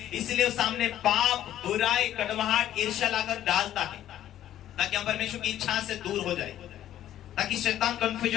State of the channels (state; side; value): quieter; right; 12.0 dB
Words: इसलिए सामने पाप, बुराई, कड़वाहट, ईर्ष्या लाकर डालता है, ताकि हम परमेश्वर की इच्छा से दूर हो जाए, ताकि शैतान